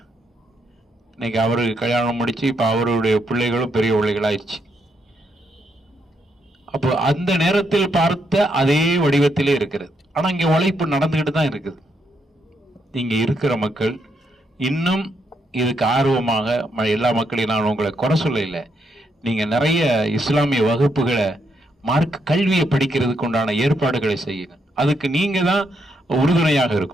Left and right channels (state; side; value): normal; both; correlation 0.77